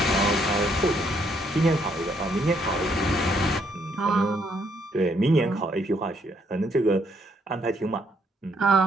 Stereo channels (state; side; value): normal; both; correlation 0.71